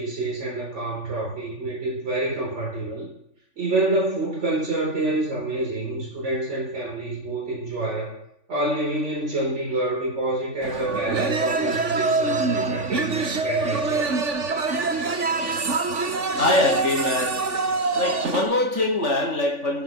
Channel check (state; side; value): late; left; 3.5 ms